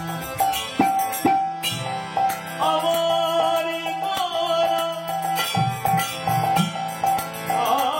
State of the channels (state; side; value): identical; both; correlation 1.00